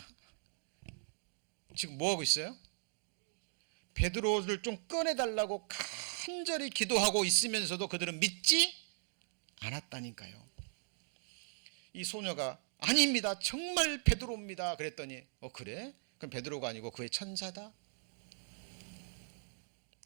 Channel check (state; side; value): silent; left; 52 dB below the other